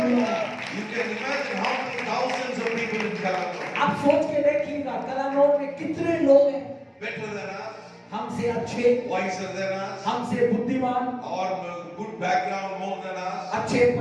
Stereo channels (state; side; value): identical; both; correlation 1.00